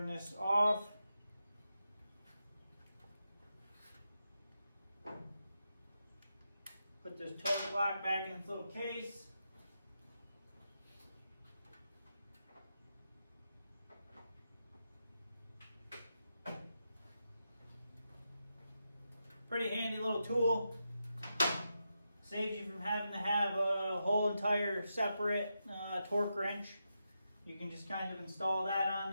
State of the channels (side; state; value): both; inverted; correlation -0.87